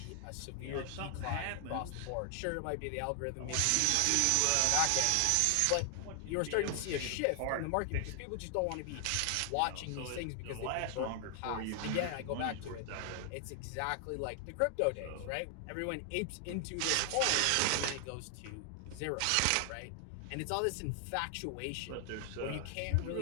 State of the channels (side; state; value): both; different; correlation 0.00